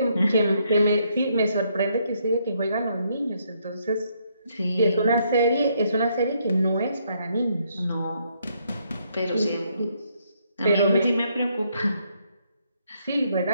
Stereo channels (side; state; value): both; inverted; correlation -0.72